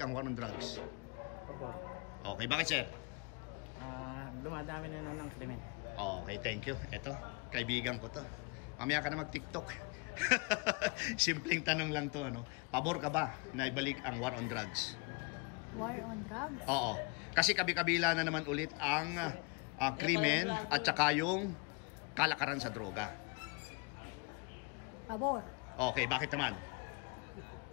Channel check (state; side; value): quieter; right; 31.0 dB